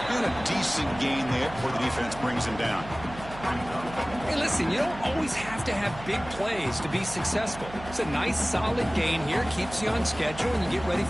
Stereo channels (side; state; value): right; noise; hum, 14 dB below the sound